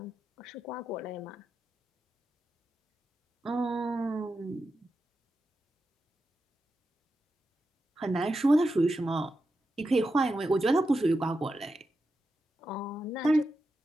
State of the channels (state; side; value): normal; both; correlation 0.89